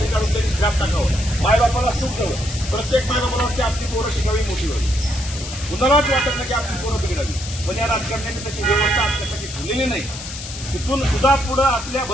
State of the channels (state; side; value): noise; left; hiss, 10 dB below the sound